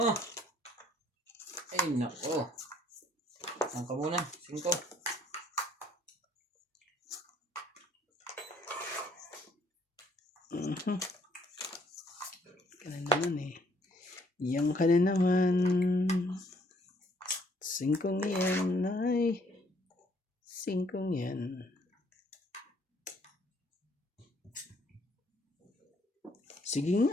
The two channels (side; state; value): both; normal; correlation 0.64